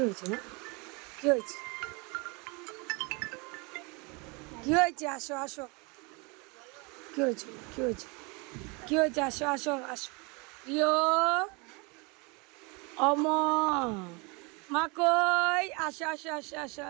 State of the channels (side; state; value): left; quieter; 29.7 dB